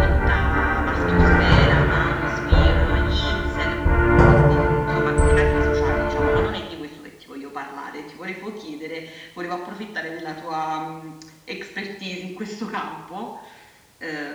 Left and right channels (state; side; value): identical; both; correlation 1.00